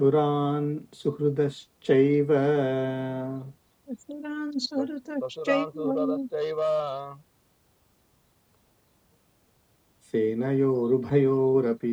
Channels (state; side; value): identical; both; correlation 1.00